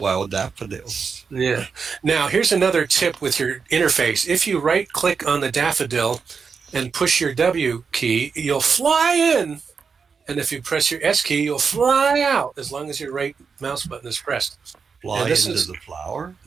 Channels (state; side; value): quieter; left; 5.6 dB